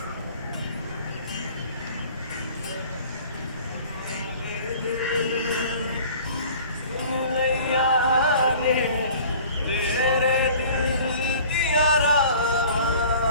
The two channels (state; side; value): inverted; both; correlation -0.47